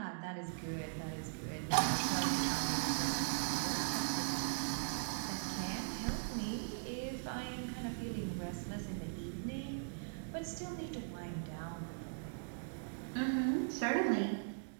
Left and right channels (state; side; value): silent; left; digital silence